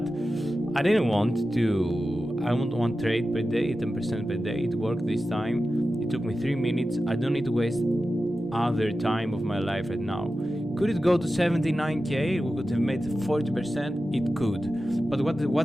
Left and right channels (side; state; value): both; normal; correlation 0.93